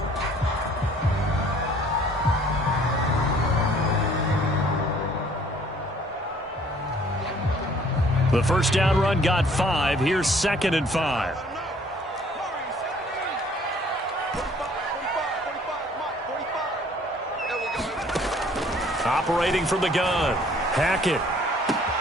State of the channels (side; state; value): both; normal; correlation 0.57